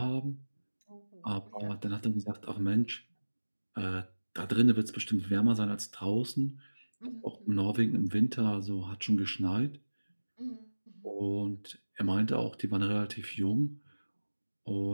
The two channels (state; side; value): inverted; both; correlation -1.00